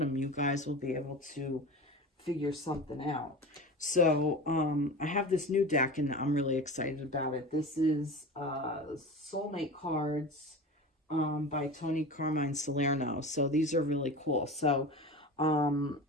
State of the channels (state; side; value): normal; both; correlation 0.31